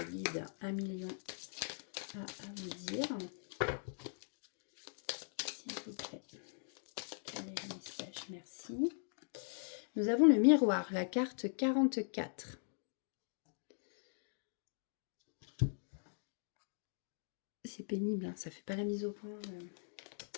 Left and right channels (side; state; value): right; silent; digital silence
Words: guide a million à vous dire? S'il vous plaît. Quel est le message? Merci. Nous avons le miroir, la carte 44. C'est pénible, hein, ça fait pas la mise au point.